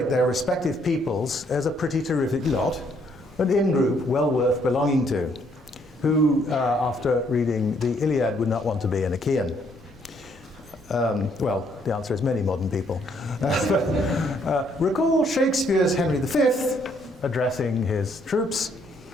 their respective peoples as a pretty terrific lot, an in-group well worth belonging to. Who, after reading the Iliad, would not want to be an Achaean? Well, the answer is many modern people. Recall Shakespeare's Henry V addressing his troops,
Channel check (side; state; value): both; normal; correlation 0.68